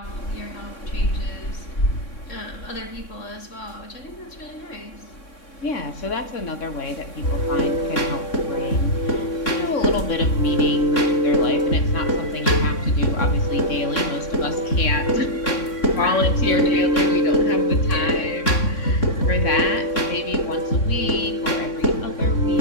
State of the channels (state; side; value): late; right; 3.6 ms